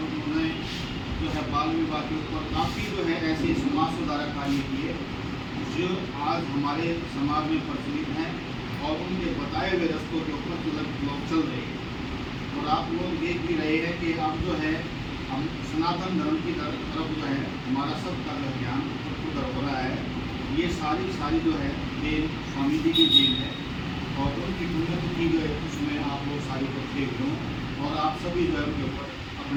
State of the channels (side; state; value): both; identical; correlation 1.00